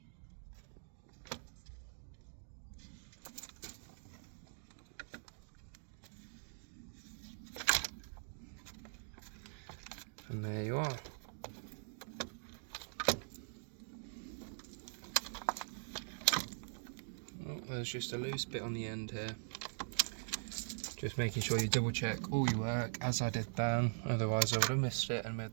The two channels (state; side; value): silent; left; digital silence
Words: And there you are. Oh, there's just a loose bit on the end here. Just making sure you double check all your work, as I did then, otherwise I would have missed it and made